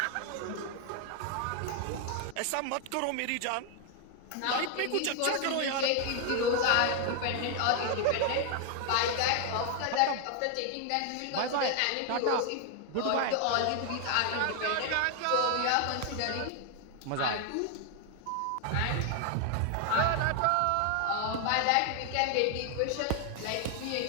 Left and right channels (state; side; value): different; both; correlation 0.00